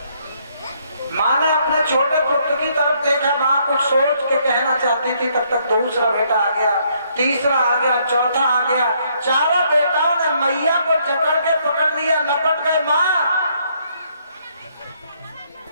माँ ने अपने छोटे पुत्र की तरफ देखा, माँ कुछ सोच के कहना चाहती थी, तब तक दूसरा बेटा आ गया, तीसरा आ गया, चौथा आ गया। चारों बेटाओं ने मैया को जकड़ के पकड़ लिया, लपट गए। माँ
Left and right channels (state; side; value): inverted; both; correlation -0.70